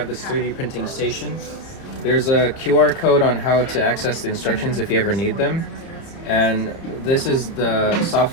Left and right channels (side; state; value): right; late; 30 ms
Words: this 3D printing station. There's a QR code on how to access the instructions if you ever need them. And this is the